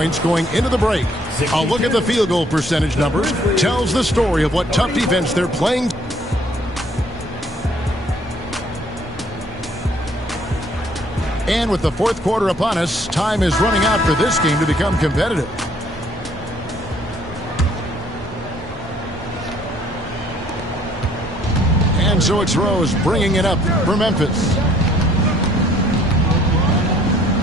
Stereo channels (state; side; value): normal; both; correlation 0.61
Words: going into the break. A look at the field goal percentage numbers tells the story of what tough defense they're playing. And with the fourth quarter upon us, time is running out for this game to become competitive. And so it's Rose bringing it up for Memphis.